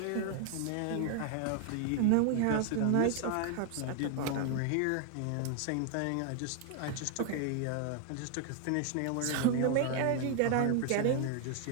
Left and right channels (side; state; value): both; different; correlation 0.00